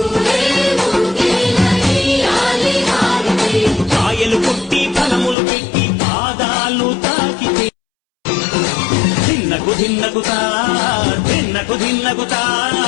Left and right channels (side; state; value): right; drops out; at 5.4 s